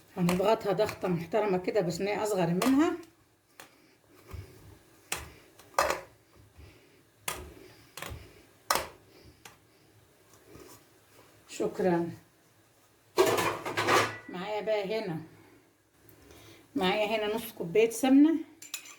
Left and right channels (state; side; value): identical; both; correlation 1.00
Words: هنضغطها ضغطه محترمه كده بصينيه اصغر منها. شكرا. معايا هنا نص كوبايه سمنه.